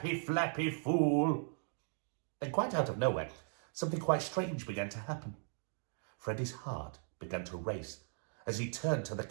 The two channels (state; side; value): silent; left; 53 dB below the other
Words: fool." Then quite out of nowhere, something quite strange began to happen. Freddy's heart began to race as he turned to the